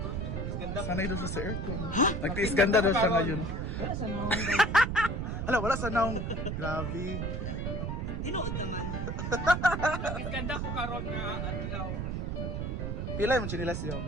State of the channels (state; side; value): noise; right; rumble, 2 dB below the sound